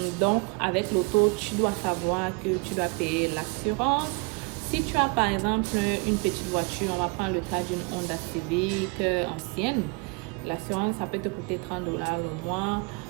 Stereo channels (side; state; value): left; quieter; 30.0 dB